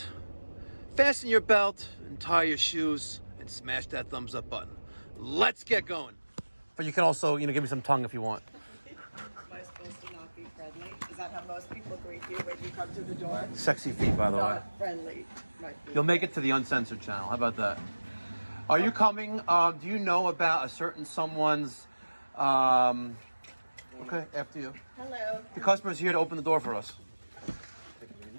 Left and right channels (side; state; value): both; inverted; correlation -1.00